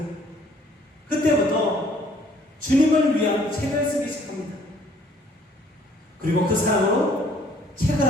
그때부터 주님을 위한 책을 쓰기 시작합니다. 그리고 그 사랑으로 책을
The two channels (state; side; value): normal; both; correlation 0.60